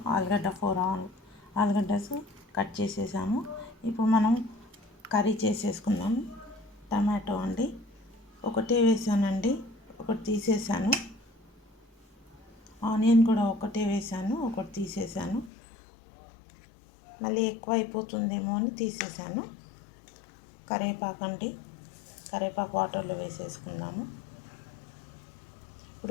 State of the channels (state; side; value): drops out; right; at 15.5 s